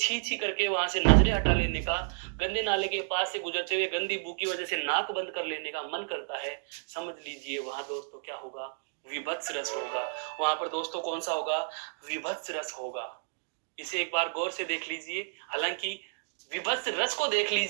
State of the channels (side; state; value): left; silent; digital silence